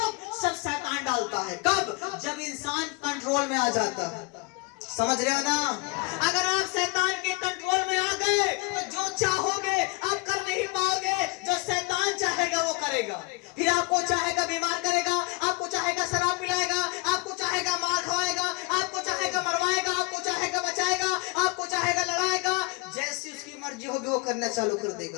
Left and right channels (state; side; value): quieter; right; 26.1 dB